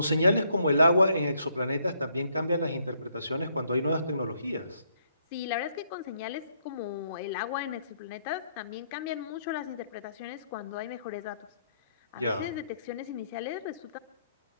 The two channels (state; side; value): inverted; both; correlation -0.71